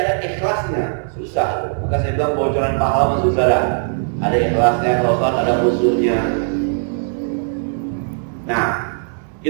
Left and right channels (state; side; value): silent; left; digital silence